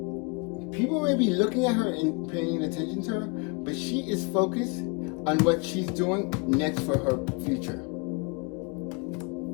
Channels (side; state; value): right; quieter; 32.0 dB